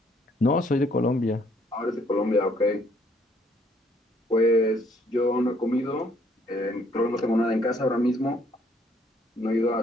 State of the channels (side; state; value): both; normal; correlation 0.66